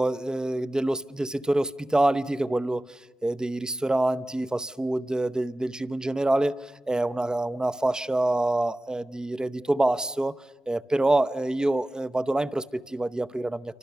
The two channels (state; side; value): normal; both; correlation 0.96